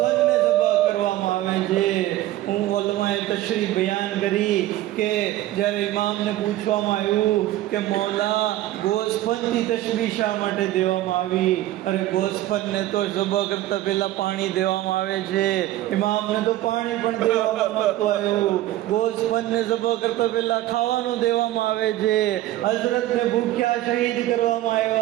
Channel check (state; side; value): quieter; left; 15.0 dB